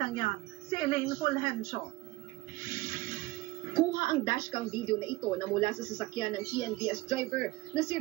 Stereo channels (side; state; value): left; quieter; 19.9 dB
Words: yan, si Elaine Fulgencio. Kuha ang dashcam video na ito na mula sa sasakyan ng TNVS driver na si